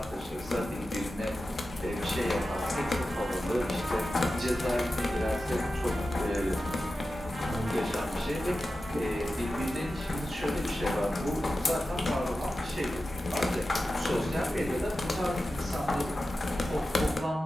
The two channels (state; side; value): normal; both; correlation 0.93